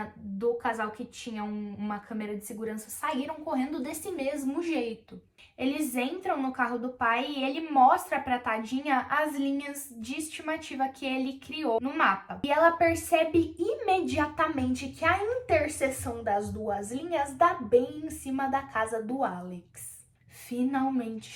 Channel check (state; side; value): identical; both; correlation 1.00